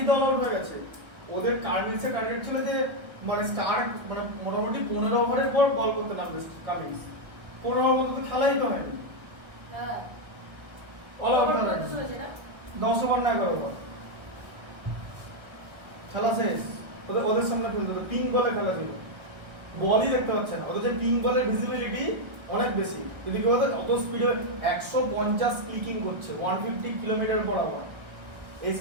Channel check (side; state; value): left; late; 1.6 ms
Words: তো অল আউট হয়ে গেছে। ওদের কামিন্সের টার্গেট ছিল যে মানে স্টার্ক মানে মোটামুটি 15 ওভারের পর বল করতে নামবে কামিন্স। 15 ওভার তো খেলাই তো হয়নি। হ্যাঁ অল আউট হয়ে গেছে। 10 ওভার না 11 ওভার খেলা শেষ। ওদের সামনে খেলতে হতো, পিঙ্ক বলে খেলা ছিল, বলই দেখতে পাচ্ছে না। ওদের যে পিঙ্ক বলের ভিজিবিলিটি অনেক বেশি। যদি কেউ অত স্পিডে 150 ক্লিকিং করছে 150 কিলোমিটার পার আওয়ার, এই